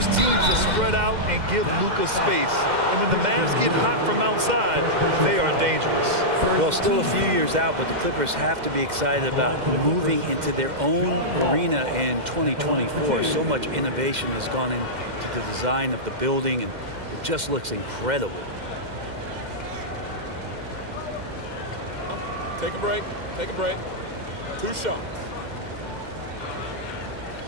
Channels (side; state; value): left; late; 2.1 ms